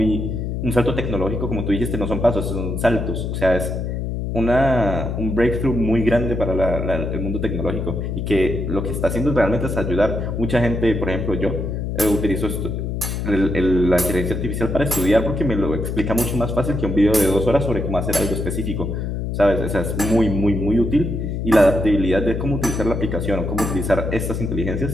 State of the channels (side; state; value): left; noise; hum, 3 dB below the sound